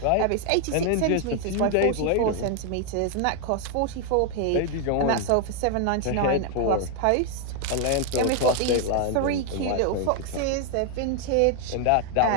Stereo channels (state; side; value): different; both; correlation 0.00